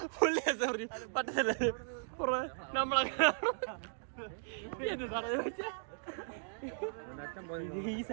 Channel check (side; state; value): left; silent; digital silence